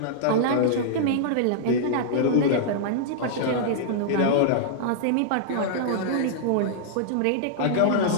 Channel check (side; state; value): both; different; correlation -0.01